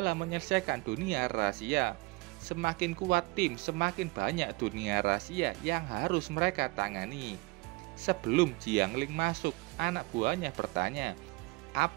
menyelesaikan dunia rahasia. Semakin kuat tim, semakin banyak dunia rahasia yang harus mereka tangani. Sebelum Jiang Ling masuk, anak buahnya bertanya,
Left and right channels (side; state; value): left; quieter; 23.9 dB